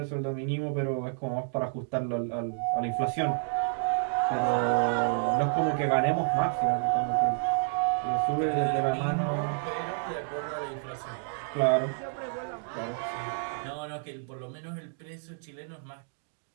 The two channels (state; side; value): silent; left; digital silence